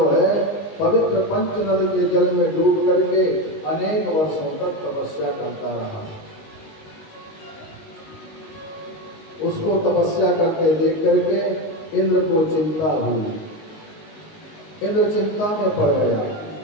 है पवित्र पंचनद के जल में डूब करके अनेक वर्षों तक तपस्या करता रहा। उसको तपस्या करके देख करके इंद्र को चिंता हुई। इंद्र चिंता में पड़ गया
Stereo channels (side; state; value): right; late; 19 ms